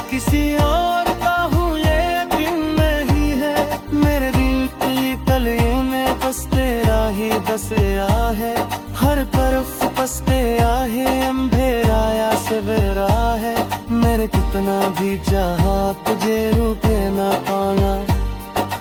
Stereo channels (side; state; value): both; identical; correlation 1.00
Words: किसी और का हूँ ये दिन नहीं है। मेरे दिल की गलियों में बस तेरा ही बसया है, हर तरफ बस तेरा ही अंधेरा या सवेरा है। मेरे कितना भी चाहा तुझे रुके ना पाना,